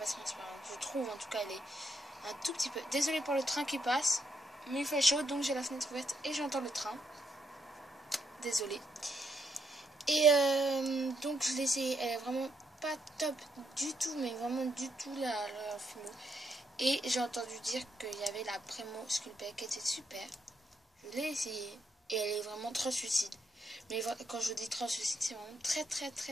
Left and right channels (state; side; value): normal; both; correlation 0.77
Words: transparente. Je trouve en tout cas elle est un tout petit peu. Désolée pour le train qui passe, mais il fait chaud donc j'ai la fenêtre ouverte et j'entends le train. Désolée. Et donc je l'ai essayé, elle est vraiment pas top du tout, mais vraiment du tout la Fimo. Et j'ai entendu dire qu'il y avait la Premo Sculpey qui était super. Je l'ai essayé et elle est vraiment translucide. Mais quand je vous dis translucide, c'est vraiment très très